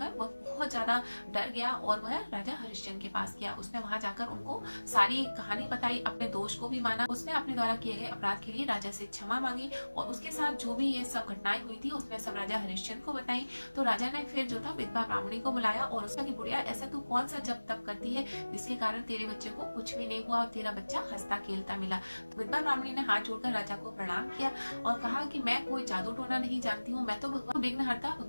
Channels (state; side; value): inverted; both; correlation -1.00